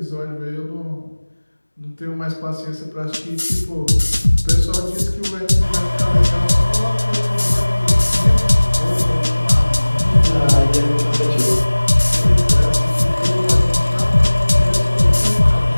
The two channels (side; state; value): both; inverted; correlation -1.00